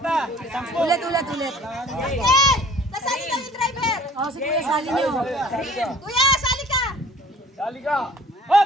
Ulit. Nasali ka yung driver. Si Kuya, sali niyo. Kuya, sali ka. Dali ka.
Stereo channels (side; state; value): both; normal; correlation 0.51